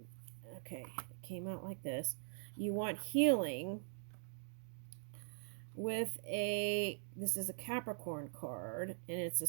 okay, it came out like this. You want healing with this is a Capricorn card, and it's a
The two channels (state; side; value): silent; left; digital silence